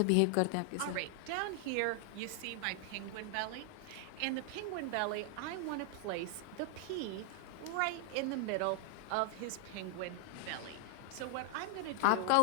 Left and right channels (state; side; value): different; both; correlation 0.00